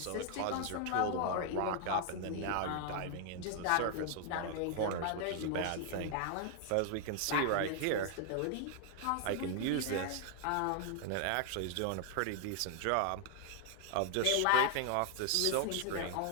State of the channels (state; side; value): different; both; correlation 0.00